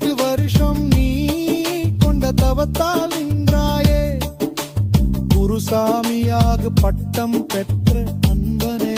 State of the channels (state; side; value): identical; both; correlation 1.00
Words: வருஷம் நீ கொண்ட தவத்தால் நின்றாயே குருசாமியாக பட்டம் பெற்ற அன்பனே